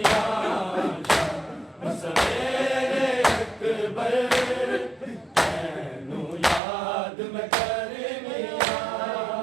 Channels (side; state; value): left; drops out; at 6.6 s